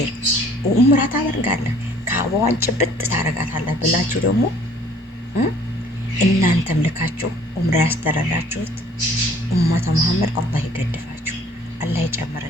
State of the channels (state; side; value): normal; both; correlation 0.56